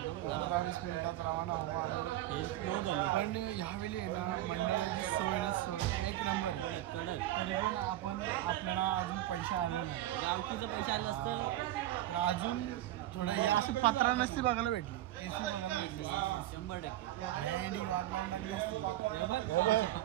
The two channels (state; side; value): quieter; left; 14.3 dB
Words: 15-20 मिनिटात रवाना हवं आम्ही. हे स्लो झाले पण ह्यावेळी आहे ना मंडळाची सोय ना सोय एक नंबर आहे. कडक तरी पण आपल्याला अजून पैसे आले नाही. गावकीचं पैसे आले असतं तर अजून थोडं या असं पत्रा नसती बघायला भेटली. AC बघायला भेटली. 100%. हँडी वाट लावून टाकली असती.